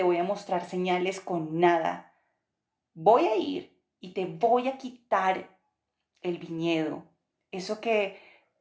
voy a mostrar señales con nada. Voy a ir y te voy a quitar el viñedo, eso que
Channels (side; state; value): both; identical; correlation 1.00